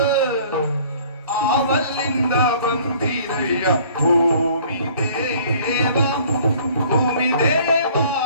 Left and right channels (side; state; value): both; inverted; correlation -0.53